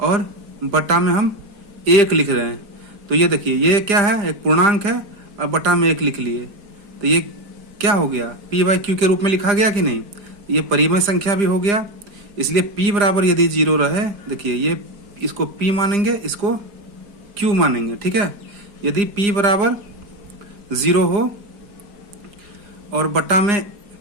बटा में हम 1 लिख रहे हैं। तो ये देखिए ये क्या है? एक पूर्णांक है, और बटा में 1 लिख लिए। तो ये क्या हो गया? p/q के रूप में लिखा गया कि नहीं? ये परिमेय संख्या भी हो गया। इसलिए p बराबर यदि 0 रहे, देखिए ये इसको p मानेंगे, इसको q मानेंगे। ठीक है, यदि p बराबर 0 हो और बटा में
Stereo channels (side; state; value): left; late; 4.9 ms